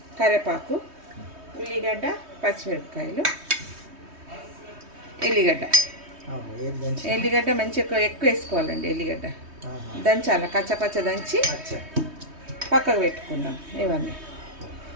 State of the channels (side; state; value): left; late; 3.2 ms